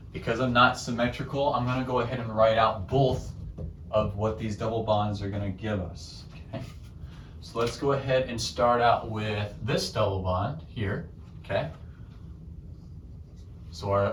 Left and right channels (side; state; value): both; identical; correlation 1.00